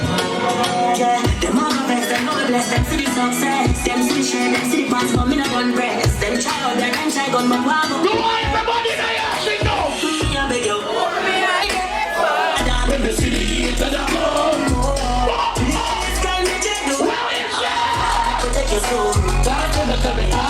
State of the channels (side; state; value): both; identical; correlation 1.00